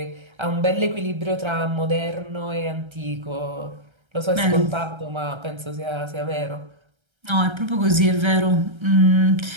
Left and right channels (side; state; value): left; late; 1.3 ms